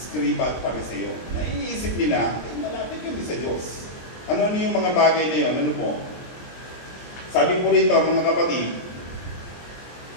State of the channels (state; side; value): late; right; 23 ms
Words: at Pariseo, na iniisip nila, malapit yun sa Diyos. Ano yung mga bagay na yun? Ano po? Sabi po rito, mga kapatid,